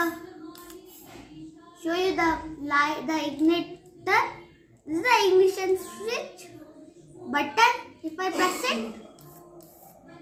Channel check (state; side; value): identical; both; correlation 1.00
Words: light, the igniter. This is the ignition switch button. If I press it,